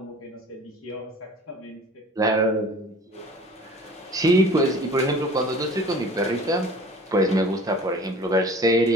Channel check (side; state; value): both; normal; correlation 0.45